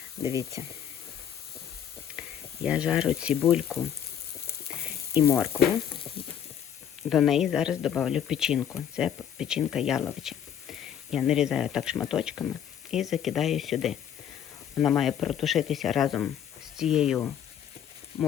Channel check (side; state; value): right; quieter; 9.2 dB